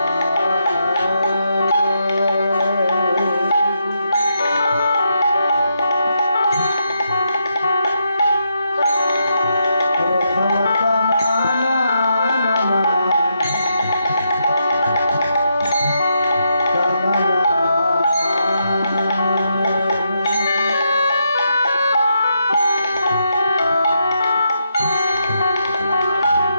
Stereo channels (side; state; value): both; inverted; correlation -0.81